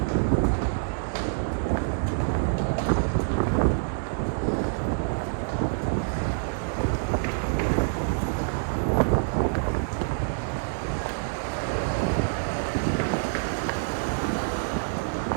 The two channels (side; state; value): left; silent; digital silence